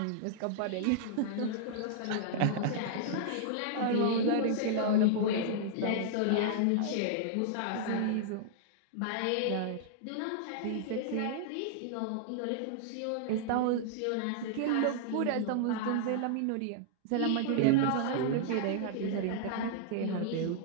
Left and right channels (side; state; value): both; different; correlation -0.01